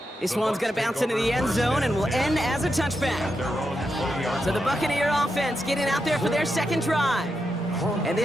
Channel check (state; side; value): normal; both; correlation 0.86